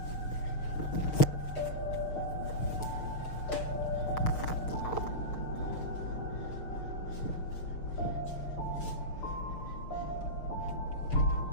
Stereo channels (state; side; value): late; right; 6.4 ms